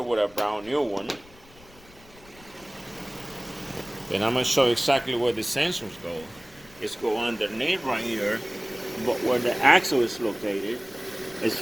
with a brand new one. And I'm going to show you exactly where the sensors go. It's go underneath right here, but where the axle is located, it's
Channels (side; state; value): left; noise; rumble, 24 dB below the sound